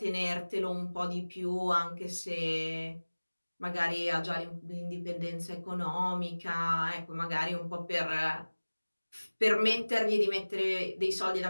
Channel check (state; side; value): inverted; both; correlation -1.00